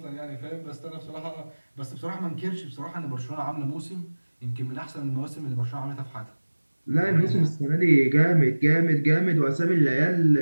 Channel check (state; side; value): inverted; both; correlation -1.00